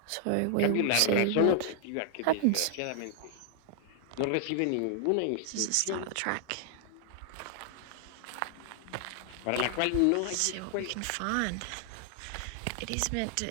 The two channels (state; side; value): different; both; correlation -0.01